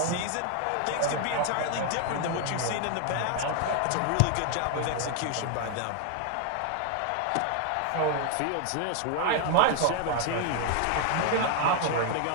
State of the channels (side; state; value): both; different; correlation 0.00